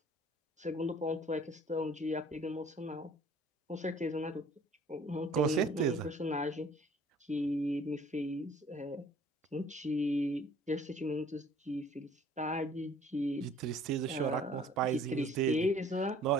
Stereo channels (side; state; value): both; normal; correlation 0.54